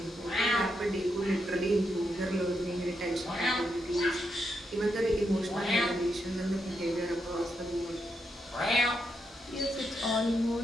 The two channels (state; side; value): normal; both; correlation 0.82